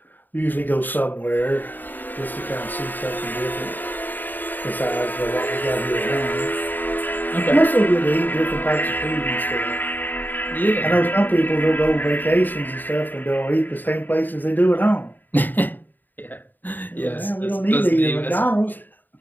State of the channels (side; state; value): right; late; 0.089 ms